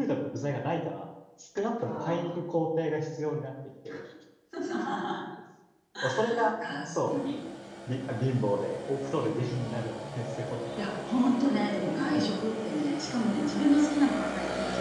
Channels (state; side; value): identical; both; correlation 1.00